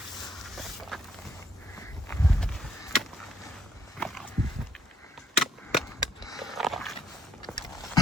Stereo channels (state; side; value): normal; both; correlation 0.69